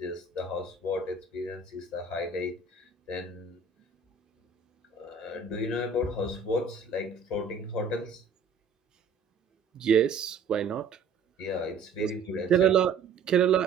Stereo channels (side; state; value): left; quieter; 4.7 dB